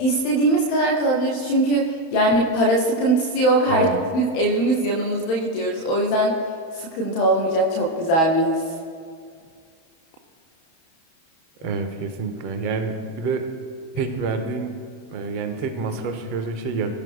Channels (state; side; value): late; right; 31 ms